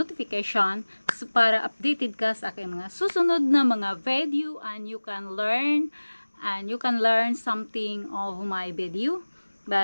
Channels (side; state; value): both; inverted; correlation -1.00